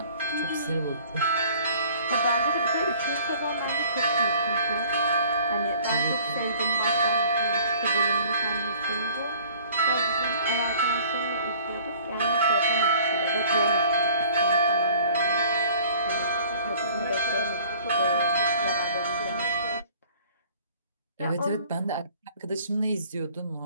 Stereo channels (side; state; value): both; inverted; correlation -0.52